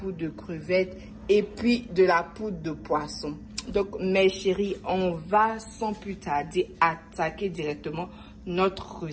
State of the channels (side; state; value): both; identical; correlation 1.00